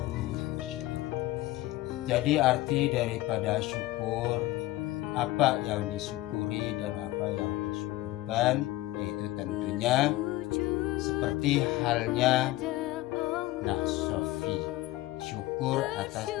lasyadid. Jadi arti daripada syukur, apa yang disyukuri dan apa yang disyukurkan, yaitu tentunya seperti halnya Sofi, syukur atas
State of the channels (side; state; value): right; quieter; 17.5 dB